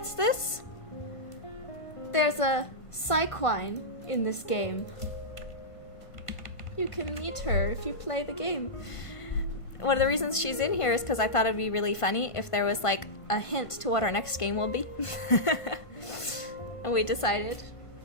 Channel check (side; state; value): right; late; 1.5 ms